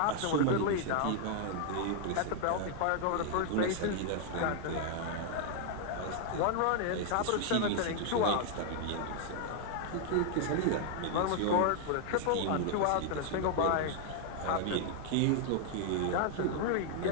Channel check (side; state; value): both; different; correlation 0.00